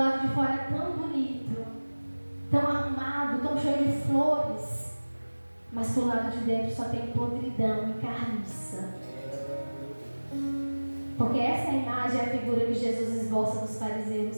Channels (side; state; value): both; inverted; correlation -1.00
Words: de fora é tão bonito, tão arrumado, tão cheio de flores, mas pro lado de dentro só tem podridão e carniça. Porque essa imagem é a figura que Jesus esboça dos